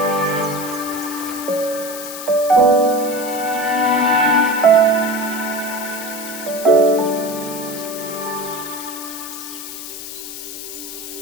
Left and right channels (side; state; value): left; noise; hiss, 10 dB below the sound